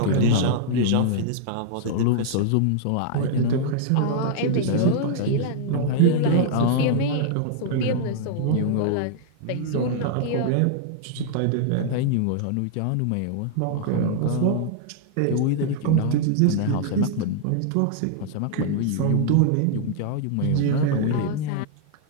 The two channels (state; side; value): different; both; correlation -0.01